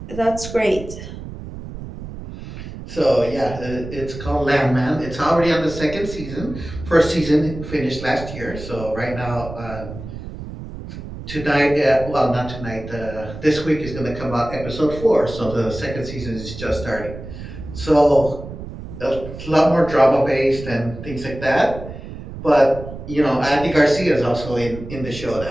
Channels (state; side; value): noise; right; rumble, 11 dB below the sound